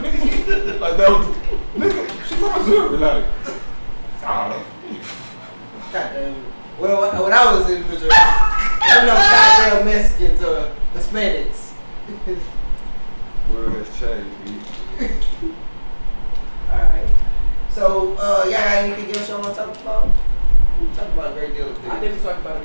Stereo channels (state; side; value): inverted; both; correlation -1.00